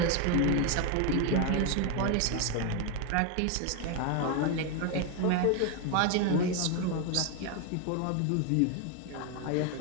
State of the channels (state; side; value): different; both; correlation 0.01